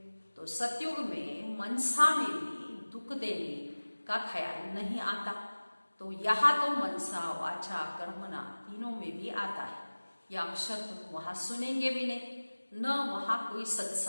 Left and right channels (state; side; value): inverted; both; correlation -1.00